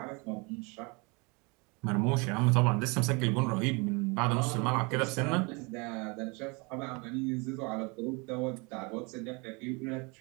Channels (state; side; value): quieter; left; 29.5 dB